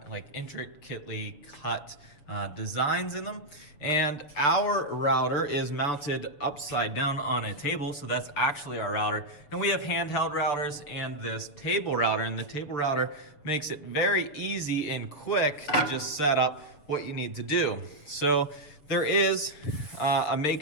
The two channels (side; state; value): right; late; 7.0 ms